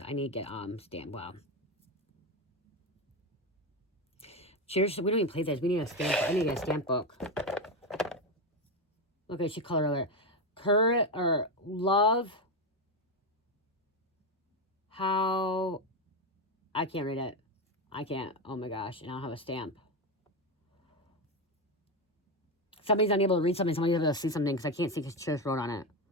I need to get, stamp. Wow. Cheers. We don't even play this. We need a stamp. I need to get a stamp book. Okay, she color alert. Courage, or love. How, I can't read it. I can't. Oh my gosh. And I don't have a stamp. Somebody's unable to read something. Somebody's able to see something because I can't see because Cheers wrote on it.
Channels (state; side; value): normal; both; correlation 0.12